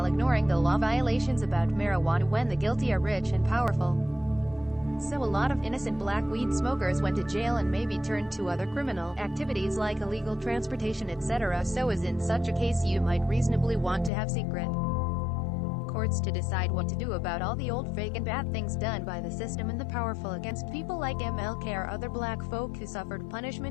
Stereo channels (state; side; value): drops out; right; at 14.1 s